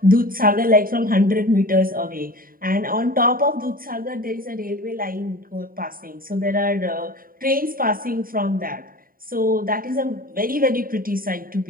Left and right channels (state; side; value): late; left; 0.41 ms